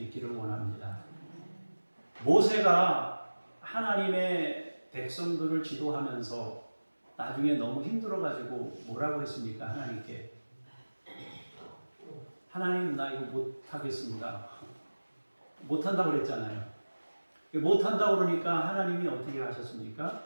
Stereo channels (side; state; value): both; inverted; correlation -1.00